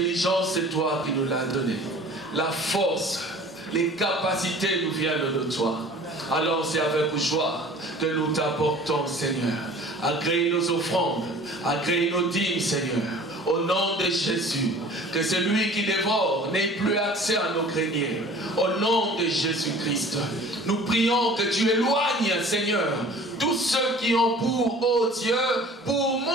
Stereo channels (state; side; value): normal; both; correlation 0.46